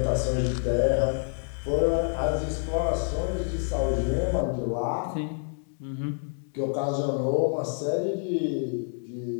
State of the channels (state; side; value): silent; right; 60 dB below the other